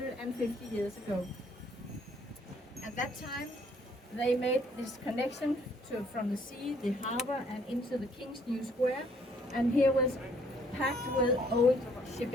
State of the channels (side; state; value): both; normal; correlation 0.64